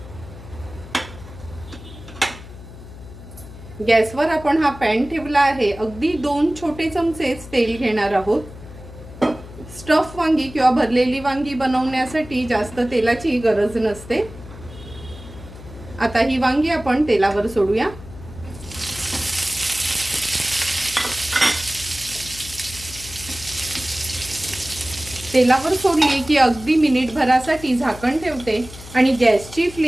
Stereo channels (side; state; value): left; noise; hum, 15 dB below the sound